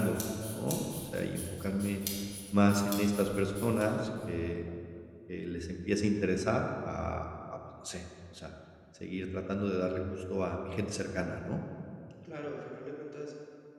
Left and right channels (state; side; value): identical; both; correlation 1.00